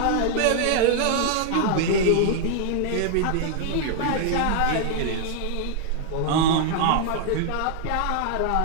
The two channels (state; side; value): different; both; correlation 0.00